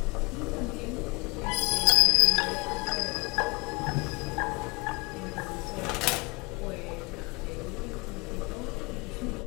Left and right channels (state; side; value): quieter; right; 27.6 dB